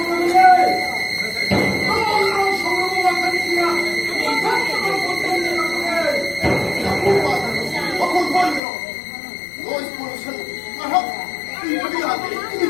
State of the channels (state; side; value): drops out; right; at 8.6 s